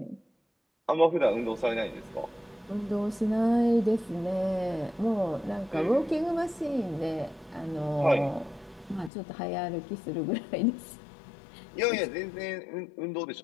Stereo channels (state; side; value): drops out; right; at 9.1 s